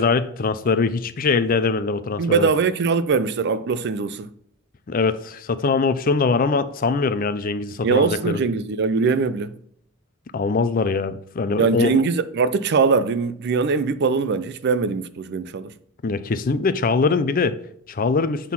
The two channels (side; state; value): both; normal; correlation 0.10